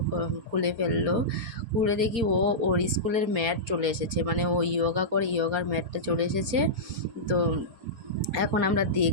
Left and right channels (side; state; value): left; late; 4.3 ms